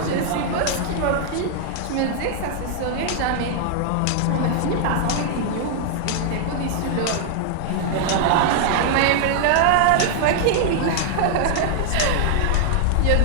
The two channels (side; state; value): both; different; correlation -0.01